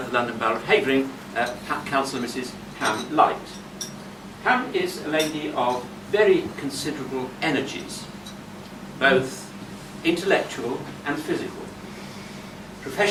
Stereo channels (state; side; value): identical; both; correlation 1.00